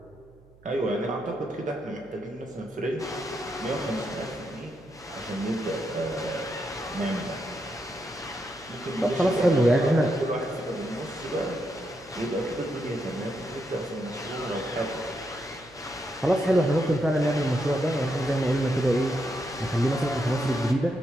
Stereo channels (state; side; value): noise; right; hum, 27 dB below the sound